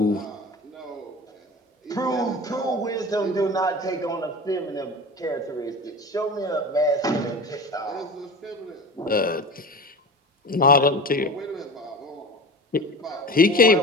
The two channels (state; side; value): normal; both; correlation 0.33